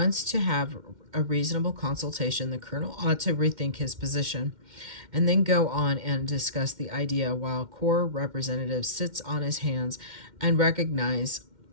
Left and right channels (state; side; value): late; left; 2.1 ms